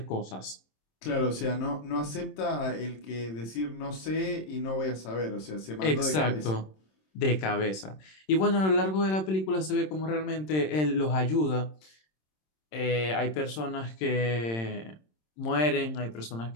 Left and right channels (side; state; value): right; late; 26 ms